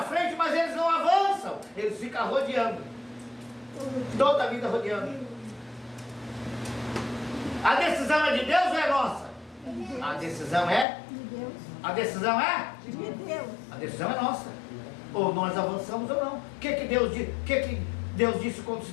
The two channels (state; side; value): drops out; right; at 10.9 s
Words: frente, mas eles não avançam. Eles ficam rodeando. Toda a vida rodeando. A decisão é de Deus ou é nossa? A decisão é? De Deus. A decisão é? De Deus. A decisão é nossa. Ou nós avançamos ou não. O que Deus disse quando se